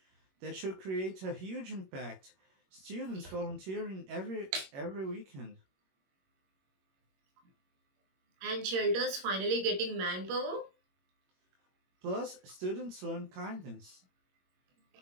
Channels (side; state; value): left; late; 21 ms